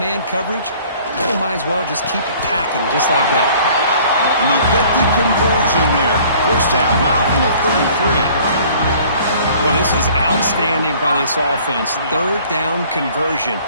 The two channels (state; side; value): inverted; both; correlation -0.53